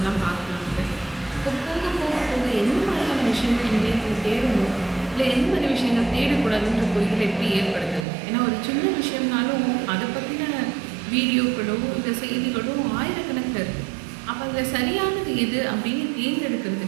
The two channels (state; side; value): drops out; left; at 8.1 s